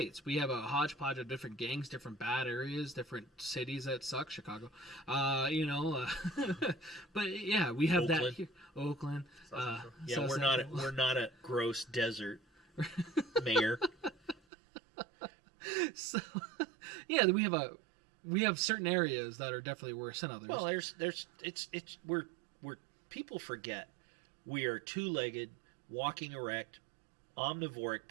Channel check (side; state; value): left; drops out; at 14.4 s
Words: we have a hodgepodge of different gangs, different bad areas, different cities that suck. Chicago, you know, but yeah, we have Oakland. that here. Oakland. Yeah, we're not a gross desert, mayor. So, yeah, we have certain areas that are definitely worse than others. Well, we're people forget we are 2-legged, walking erect, omnivoric,